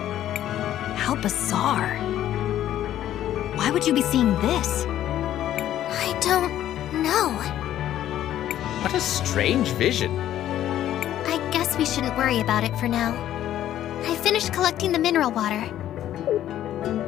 How bizarre. Why would you be seeing this? I don't know. What a strange vision. I guess we shouldn't worry about it for now. I finished collecting the mineral water.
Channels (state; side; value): quieter; right; 12.1 dB